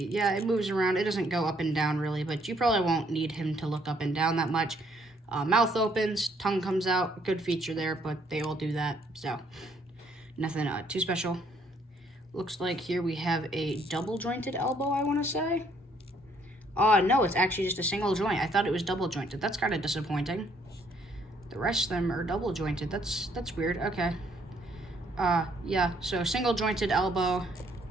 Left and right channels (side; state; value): both; normal; correlation 0.67